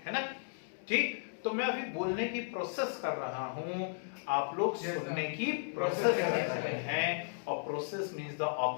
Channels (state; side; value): silent; right; digital silence